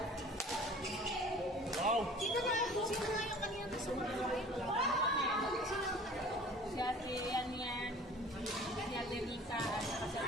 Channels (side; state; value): both; normal; correlation 0.46